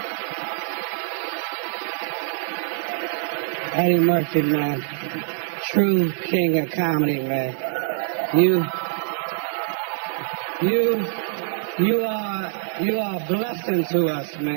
Eddie Murphy, man. True king of comedy, man. You are a blessing to us,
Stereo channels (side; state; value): left; silent; 62 dB below the other